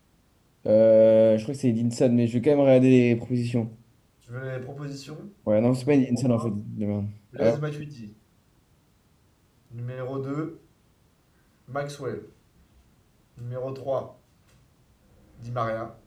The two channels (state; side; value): identical; both; correlation 1.00